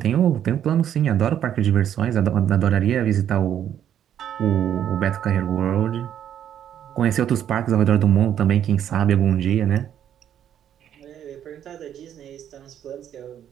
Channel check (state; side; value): quieter; left; 10.0 dB